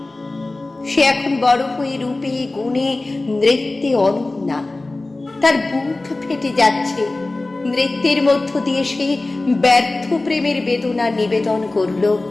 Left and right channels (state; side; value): quieter; right; 3.0 dB